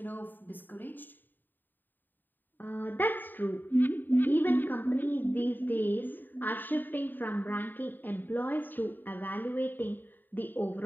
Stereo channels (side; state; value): right; late; 0.091 ms